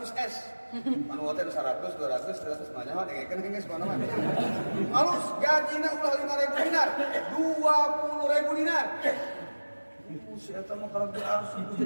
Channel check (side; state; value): both; inverted; correlation -1.00